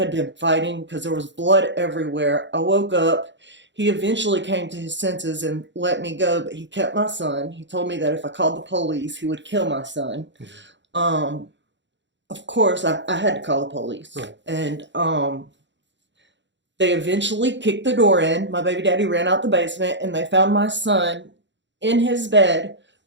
been fighting because there was blood everywhere. I woke up. He eventually came to his senses and let me go, but he kept my son. He told me that if I called the police, he would kill my son. Of course, I had to call the police. And they eventually kicked the door in. My baby daddy ran out the basement, and they found my son in his bed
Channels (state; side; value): late; left; 0.53 ms